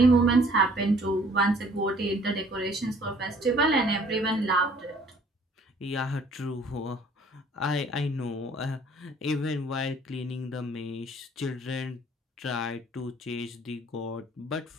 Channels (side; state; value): both; normal; correlation 0.57